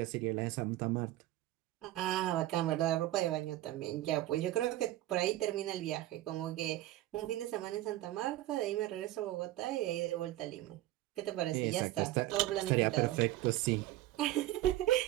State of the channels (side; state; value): left; quieter; 15.4 dB